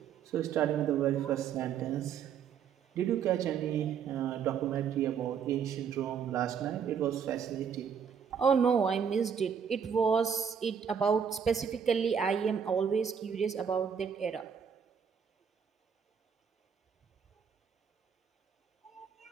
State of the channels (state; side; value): quieter; left; 7.3 dB